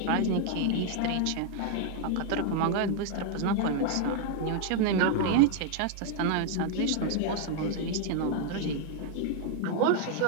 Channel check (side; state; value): both; different; correlation 0.00